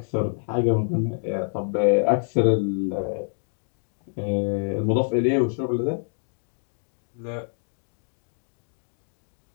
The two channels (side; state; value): right; silent; 61 dB below the other